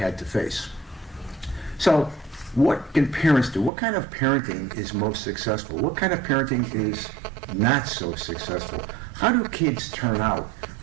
to face. So what can parents do? What kind of parenting is most successful? What kind of parenting is not so successful? How do kids turn out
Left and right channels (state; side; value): drops out; left; at 3.7 s